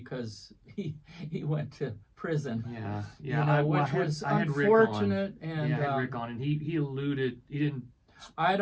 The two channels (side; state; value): both; identical; correlation 1.00